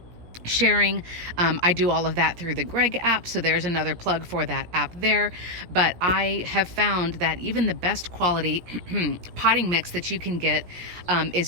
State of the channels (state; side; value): late; left; 17 ms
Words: sharing. I do all of that through the Greg app, so there's another plug for that app there. But I have found that even the best quality potting mix that you can get